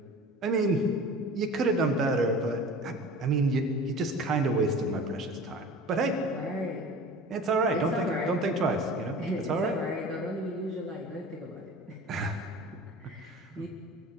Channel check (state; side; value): normal; both; correlation 0.39